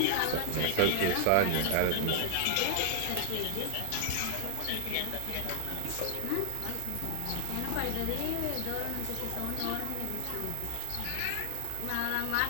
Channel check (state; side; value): different; both; correlation 0.00